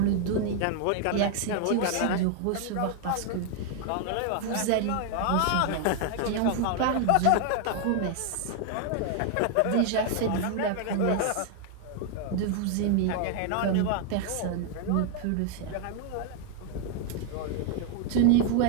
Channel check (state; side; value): different; both; correlation 0.00